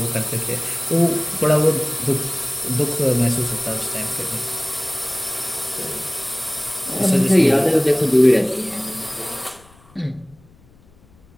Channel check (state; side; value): noise; left; rumble, 29 dB below the sound